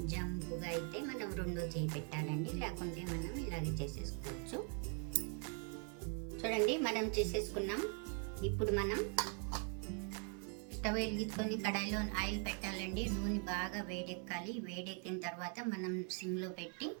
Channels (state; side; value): quieter; left; 39.4 dB